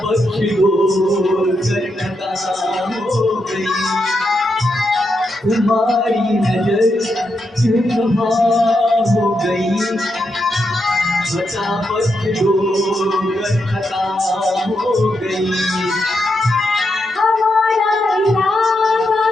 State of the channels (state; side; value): normal; both; correlation 0.83